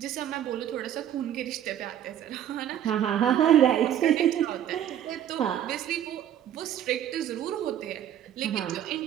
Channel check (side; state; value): left; quieter; 10.7 dB